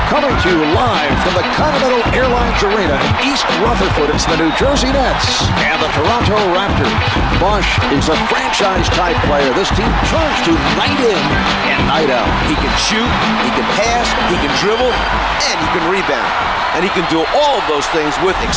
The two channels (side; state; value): both; identical; correlation 1.00